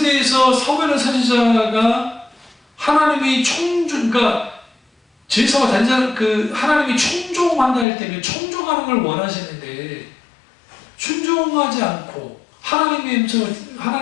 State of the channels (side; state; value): right; drops out; at 7.9 s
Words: 대해서 사무엘 선지자가 하나님이 그러니까 제사와 단장 하나님이 총종한다 할 때는 총종하는 걸 원하시는데 순종하지 않고